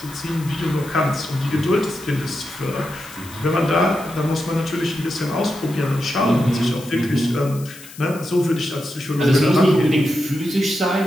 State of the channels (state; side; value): noise; left; hiss, 18 dB below the sound